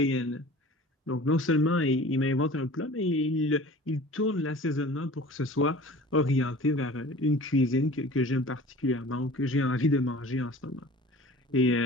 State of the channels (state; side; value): normal; both; correlation 0.43